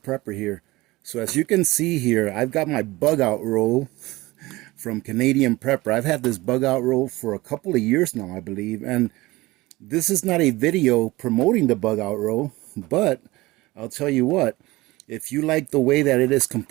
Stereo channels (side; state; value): left; quieter; 20.0 dB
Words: here. So as you can see here, I've got my bug out roll from Canadian Prepper. I've had this bug out roll for a couple of years now, I believe. And this is not a video promoting the bug out roll, but I'll tell you what, if you like the way that it is